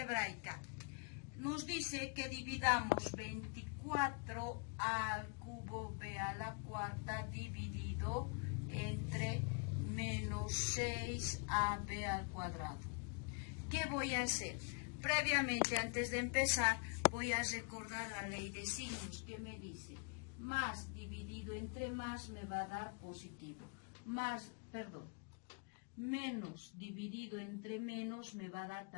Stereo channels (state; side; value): quieter; right; 37.0 dB